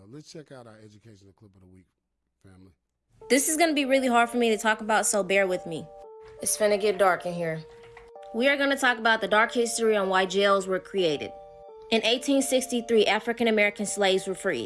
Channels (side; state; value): both; identical; correlation 1.00